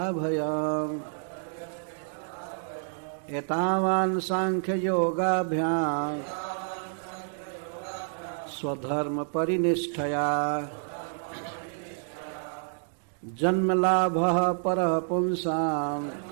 भयम्। एतावान् सांख्ययोगाभ्याम् स्वधर्म परिनिष्ठया। जन्मलाभः परः पुंसाम्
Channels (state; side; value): silent; left; digital silence